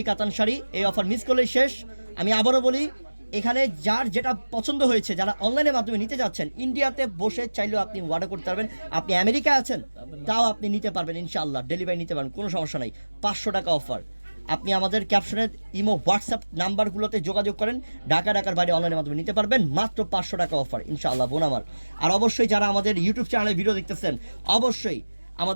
কাতান শাড়ি। এই অফার মিস করলেই শেষ। আমি আবারও বলি, এখানে যার যেটা পছন্দ হয়েছে, যারা অনলাইনের মাধ্যমে নিতে যাচ্ছেন, ইন্ডিয়াতে বসে চাইলেও আপনি অর্ডার করতে পারবেন। আপনি আমেরিকায় আছেন তাও আপনি নিতে পারবেন ইনশাআল্লাহ, ডেলিভারি নিতে পারবেন, কোনো সমস্যা নেই। 500 টাকা অফার। আপনি আমাদের ক্যাপশনের ইমো হোয়াটসঅ্যাপ নাম্বারগুলোতে যোগাযোগ করেন, ঢাকার বাইরে অনলাইনের মাধ্যমে নিতে পারবেন। মাত্র 500 টাকা অফার ইনশাআল্লাহ বোন আমার। আর অবশ্যই যারা আমাদের ইউটিউব চ্যানেলে ভিডিও দেখতেছেন, অবশ্যই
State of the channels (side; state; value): both; inverted; correlation -1.00